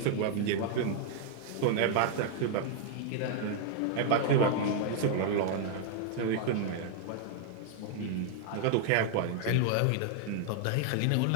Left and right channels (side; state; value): both; different; correlation 0.00